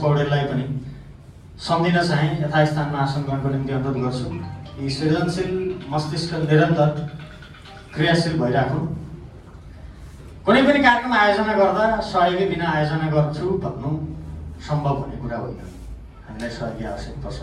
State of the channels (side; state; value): both; identical; correlation 1.00